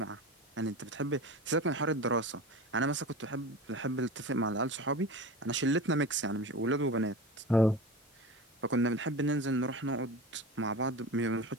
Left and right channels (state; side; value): normal; both; correlation 0.31